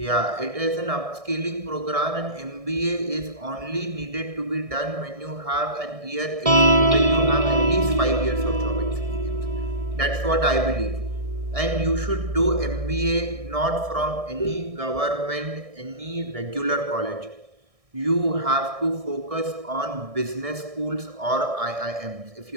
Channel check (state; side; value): late; left; 1.6 ms